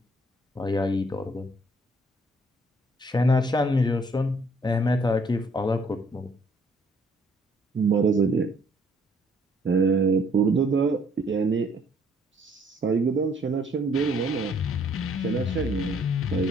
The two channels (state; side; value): normal; both; correlation 0.63